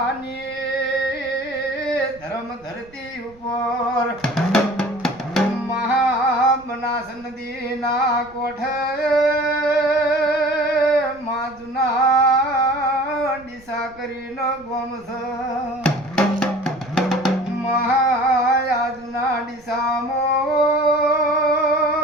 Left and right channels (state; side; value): noise; right; rumble, 26 dB below the sound